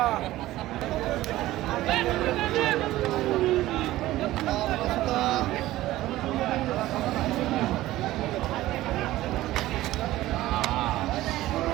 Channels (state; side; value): quieter; left; 16.1 dB